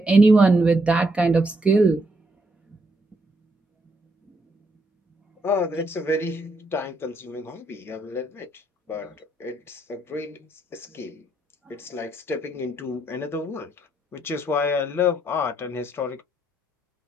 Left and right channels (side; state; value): both; normal; correlation 0.75